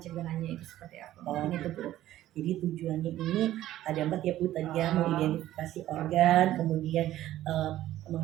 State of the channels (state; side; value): quieter; left; 13.8 dB